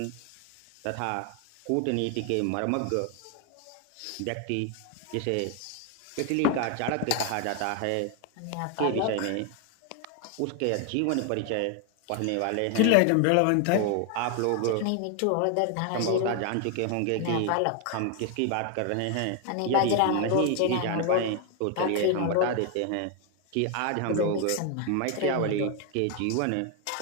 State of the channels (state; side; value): different; both; correlation 0.01